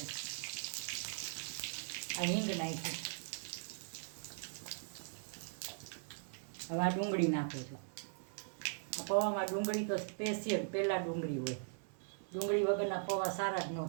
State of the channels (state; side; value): silent; left; 51 dB below the other